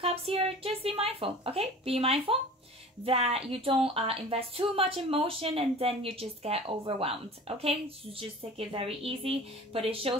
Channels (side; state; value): both; normal; correlation 0.41